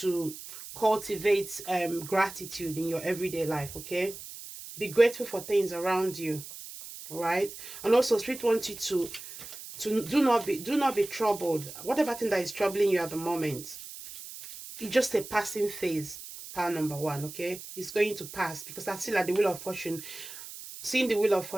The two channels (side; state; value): right; noise; hiss, 13 dB below the sound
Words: cultivate gratitude in your everyday life. Okay, be grateful for things around you. All right, and also Spirit wants you to do not be troubled. Whatever thing that is troubling you at the moment, it's just a passing phase. Pile number one. Okay, it's going to pass, because I feel like the wheel of fortune. Seeing the wheel of